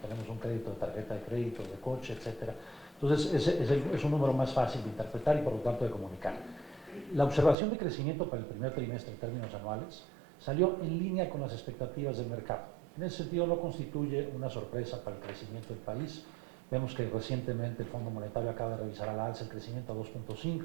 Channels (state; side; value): drops out; left; at 7.6 s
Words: un crédito de tarjeta de crédito, de coche, etc. Entonces, es un número más fácil de interpretar y por lo tanto de comunicar. La observación de crecimiento para el primer trimestre en términos anuales salió en línea con las expectativas del mercado. En ese sentido, no constituye una sorpresa para el crecimiento del país. Vemos que recientemente el Fondo Monetario acaba de revisar a la alza el crecimiento a